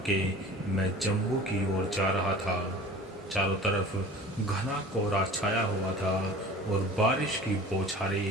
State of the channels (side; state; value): both; normal; correlation 0.42